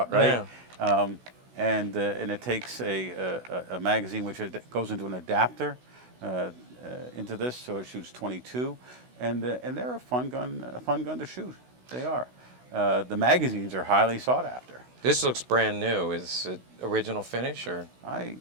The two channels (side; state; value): left; late; 16 ms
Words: right? Yeah. And it takes a magazine which goes into an adapter into this, so it shoots 22, and they're a fun gun to shoot. They are. The magazines are highly sought after. This looks brand new. Is it original finish or?